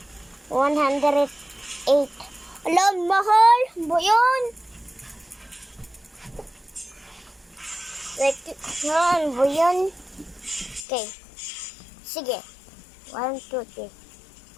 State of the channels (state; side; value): drops out; right; at 10.9 s